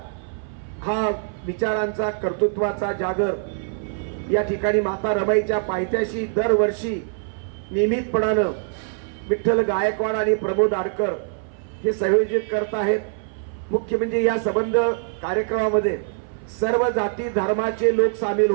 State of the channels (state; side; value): silent; left; 59 dB below the other